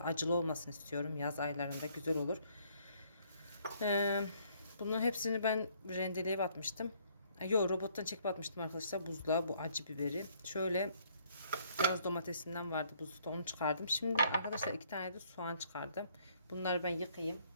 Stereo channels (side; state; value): both; inverted; correlation -0.65